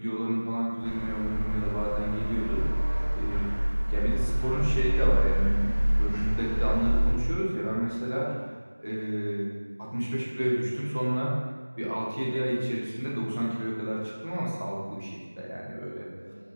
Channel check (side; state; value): both; inverted; correlation -1.00